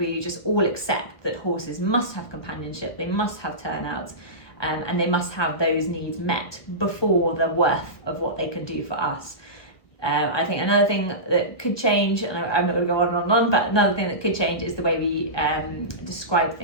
just all accept that horses must have companionship, they must have turnouts, and they must have those needs met before the worth of what they can do for us. I think another thing that could change, and I'm not going to go on and on, but another thing that could change is the way we describe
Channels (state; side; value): late; right; 1.4 ms